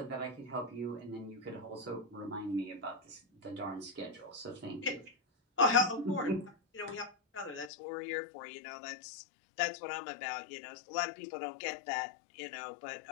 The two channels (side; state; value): right; drops out; at 7.7 s